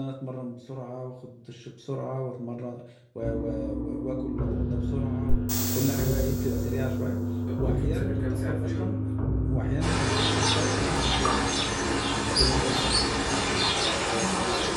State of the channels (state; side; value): identical; both; correlation 1.00